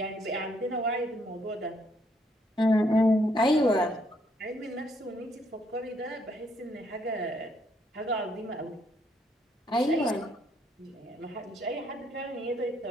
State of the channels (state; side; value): normal; both; correlation 0.71